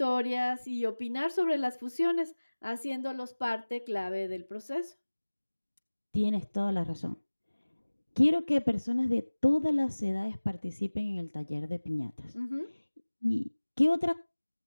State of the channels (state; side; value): inverted; both; correlation -1.00